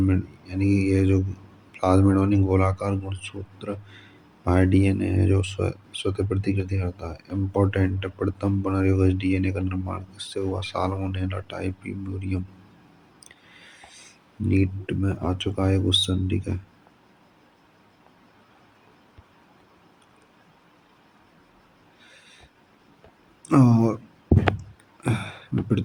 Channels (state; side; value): identical; both; correlation 1.00